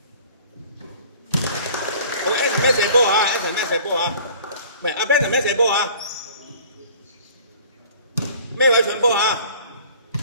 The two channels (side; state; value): both; inverted; correlation -0.49